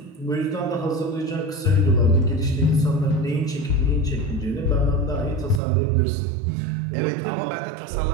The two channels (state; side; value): drops out; left; at 5.6 s